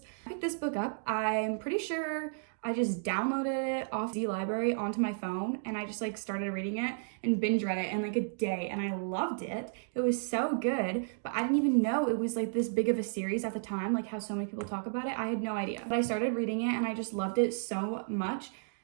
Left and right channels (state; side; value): silent; left; digital silence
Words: I picked this book up. I'm pretty sure I just downloaded it off the library onto my phone and I just like started reading it and binge read it in like a day and I loved it. It was so good, but I didn't even know it was like this big of a series at the time, like how so many people talk about it. I had no idea. But I started reading it and I just loved it so much.